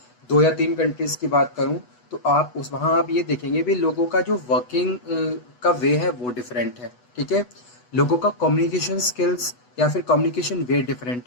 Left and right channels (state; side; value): late; right; 8.1 ms